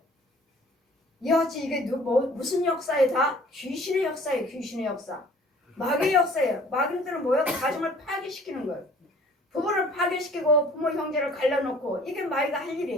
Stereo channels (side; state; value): both; normal; correlation 0.52